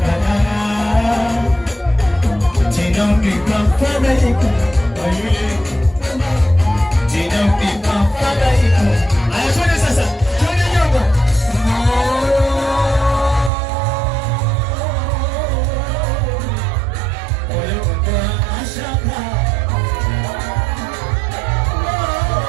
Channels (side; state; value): left; drops out; at 13.5 s